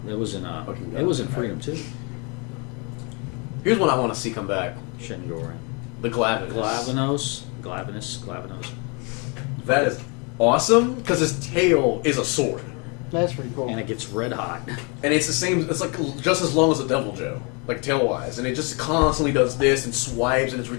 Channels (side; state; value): right; quieter; 32.6 dB